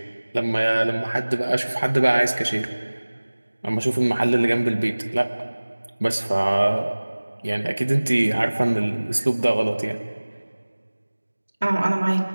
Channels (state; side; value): inverted; both; correlation -1.00